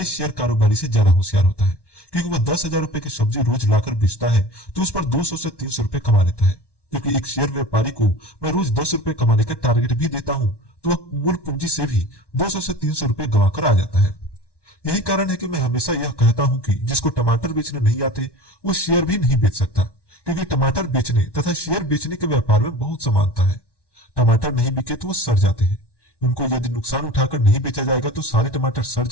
शेयर कारोबारी से ज्यादा होशियार होता है, क्योंकि वह 10,000 रुपए की सब्जी रोज लाकर बेचता है तो उस पर 200 से 300 रुपए कमा लेता है। क्योंकि एक शेयर व्यापारी को मैं रोज 10 रुपए कमाने का टारगेट भी देता हूं तो वह मूल पूंजी से भी 200 से 300 रुपए गंवा कर आ जाता है। यही कारण है कि मैं हमेशा यह कहता हूं कि जिसको टमाटर बेचने नहीं आते वो शेयर भी नहीं बेच सकता, क्योंकि टमाटर बेचने तथा शेयर बेचने के व्यापार में बहुत समानता है। टमाटर नहीं बिके तो वो सड़ जाते हैं। उनको यदि नुकसान उठाकर नहीं बेचा जाएगा तो सारे टमाटर सड़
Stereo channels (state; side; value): late; right; 1.1 ms